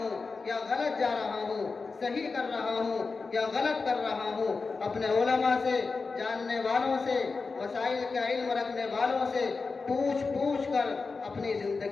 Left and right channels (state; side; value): quieter; right; 4.3 dB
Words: یا غلط جا رہا ہوں، صحیح کر رہا ہوں یا غلط کر رہا ہوں۔ اپنے علماء سے، جاننے والوں سے، مسائل کا علم رکھنے والوں سے پوچھ کر اپنی